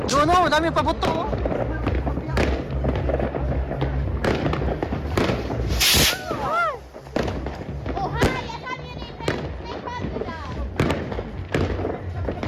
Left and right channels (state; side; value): identical; both; correlation 1.00